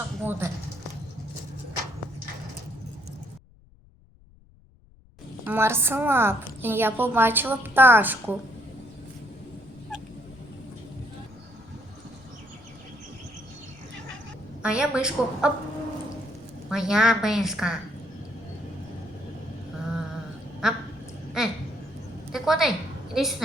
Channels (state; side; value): noise; left; rumble, 27 dB below the sound